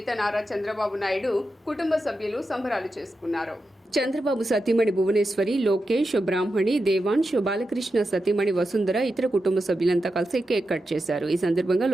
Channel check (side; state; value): both; normal; correlation 0.89